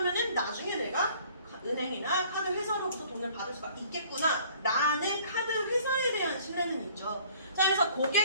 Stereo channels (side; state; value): both; inverted; correlation -0.55